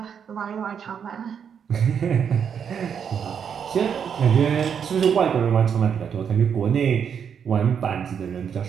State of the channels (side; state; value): left; quieter; 7.5 dB